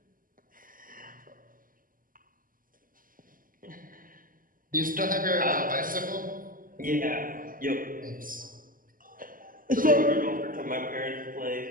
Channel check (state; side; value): late; left; 0.41 ms